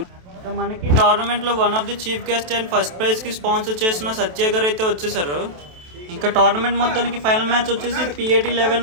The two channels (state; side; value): late; left; 27 ms